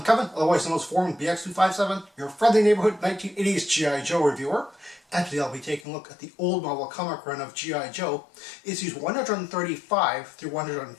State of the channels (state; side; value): drops out; right; at 5.8 s